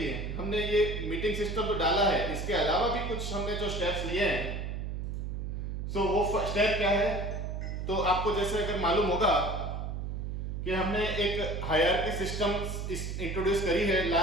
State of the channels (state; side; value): noise; right; hum, 4 dB below the sound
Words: हमने ये मीटिंग सिस्टम तो डाला है। इसके अलावा भी कुछ हमने जो स्टेप्स लिए हैं, सो वो स्टेप क्या है, तो आपको जैसे अगर मालूम होगा कि हमने एक हायरार्की सिस्टम इंट्रोड्यूस करी है